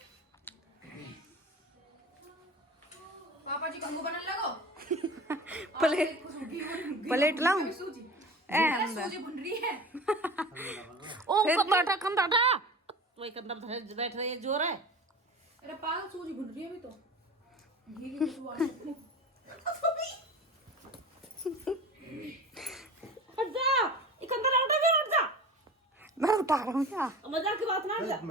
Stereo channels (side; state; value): both; normal; correlation 0.35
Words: पापा जी कंगू बनने लगो। प्लेट प्लेट लाऊं? सूजी हम सूजी भुन रही है। ओ कंदाटा कंदाटा वही कंदर बैठ रही है, जोर है। अरे पागल सूजी भुन रही है अभी तो, घी की खुशबू आ रही है। हट जा, ये कंदर उठा भी हट जा। मैं उठा रहा हूँ क्या? मजाक की बात ना, हट जा।